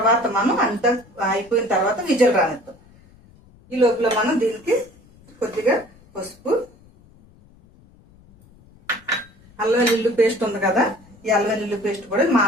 మనం అంతా అయిపోయిన తర్వాత విజలు రానిద్దాం. ఈ లోపల మనం దీనికి కొద్దిగా పసుపు, అల్లం వెల్లుల్లి పేస్ట్ ఉంది కదా, ఈ అల్లం వెల్లుల్లి పేస్ట్ కూడా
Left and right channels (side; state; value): left; noise; rumble, 27 dB below the sound